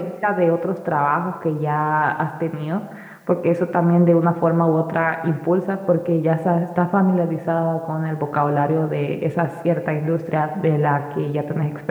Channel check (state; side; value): identical; both; correlation 1.00